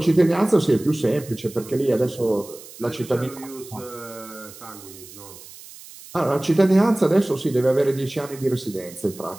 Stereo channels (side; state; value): right; noise; hiss, 18 dB below the sound